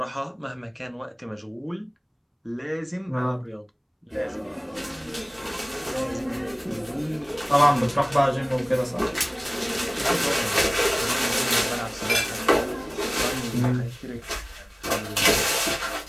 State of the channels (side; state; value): both; identical; correlation 1.00